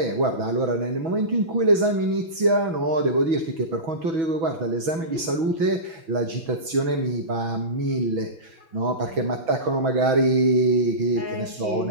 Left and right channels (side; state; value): left; late; 6.2 ms